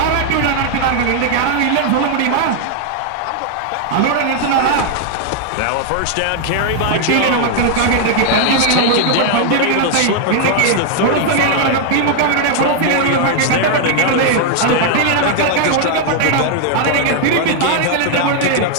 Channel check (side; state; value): both; different; correlation 0.00